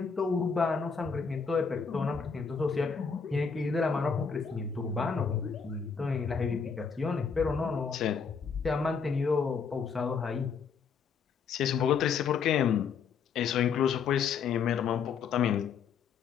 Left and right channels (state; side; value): quieter; right; 6.0 dB